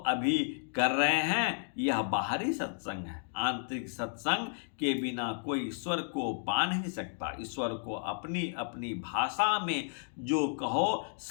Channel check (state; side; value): silent; right; digital silence